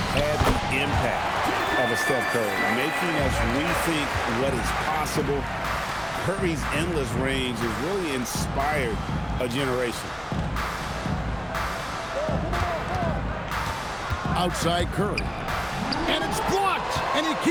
had the impact of a Steph Curry, making us rethink what is possible. Curry's endless range has really inspired a generation. Outside Curry. And it's blocked, and he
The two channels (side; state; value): both; identical; correlation 1.00